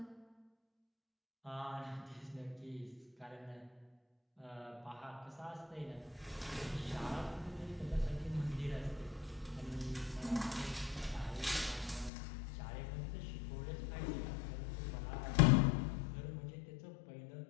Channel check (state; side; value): drops out; right; at 12.1 s